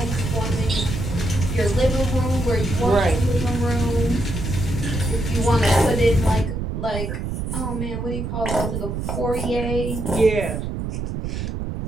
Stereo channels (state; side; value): noise; right; rumble, 3 dB below the sound